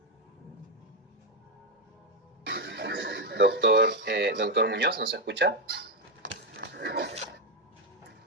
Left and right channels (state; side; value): normal; both; correlation 0.05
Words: Doctor Muñoz, ¿nos escucha?